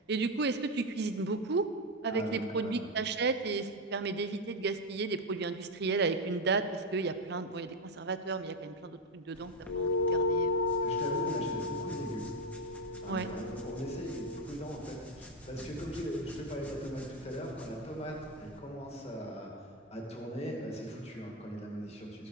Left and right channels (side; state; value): both; normal; correlation 0.09